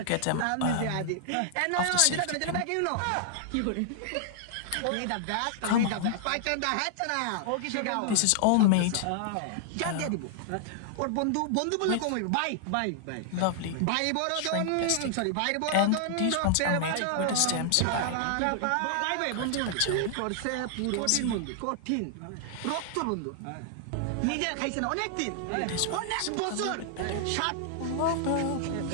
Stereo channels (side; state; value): both; different; correlation -0.01